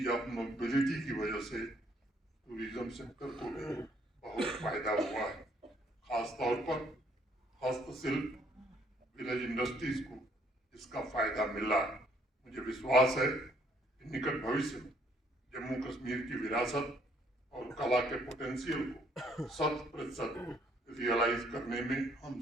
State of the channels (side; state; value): both; normal; correlation 0.66